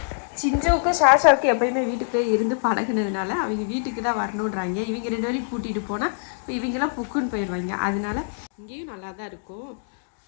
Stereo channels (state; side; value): silent; right; digital silence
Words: சிஞ்சவுக்கும் ஷாஷாவுக்கும் எப்பயுமே வீட்டுக்கு போய் இருந்து பழகினதுனால அவங்க வீட்டுக்கு தான் வரணுன்றாங்க. இவங்க 2 பேரையும் கூட்டிகிட்டு போனால் இப்போ இவங்களாம் புக்குன்னு போயிடுவாங்க. அதனால இங்கேயும் நல்லா தான் இருக்கும்.